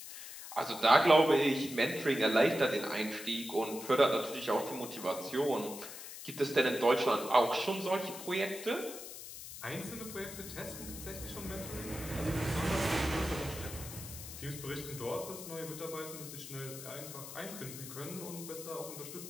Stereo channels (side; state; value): left; noise; hiss, 11 dB below the sound